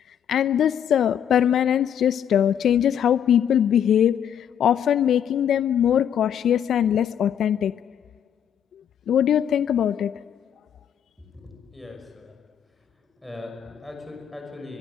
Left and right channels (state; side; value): quieter; right; 9.0 dB